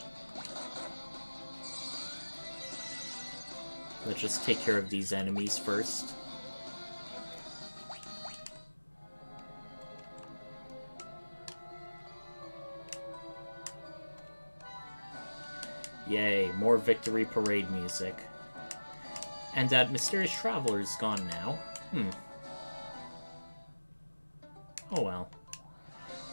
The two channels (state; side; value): inverted; both; correlation -1.00